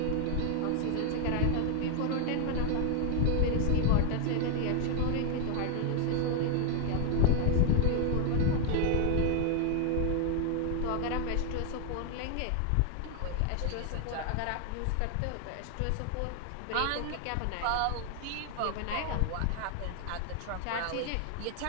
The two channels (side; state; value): both; different; correlation 0.00